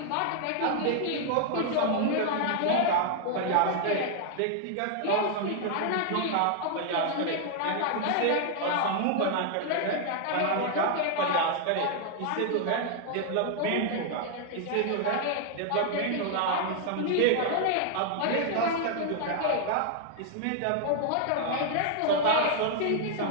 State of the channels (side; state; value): both; different; correlation 0.00